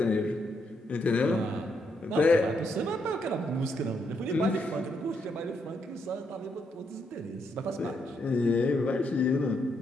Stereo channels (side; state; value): both; normal; correlation 0.77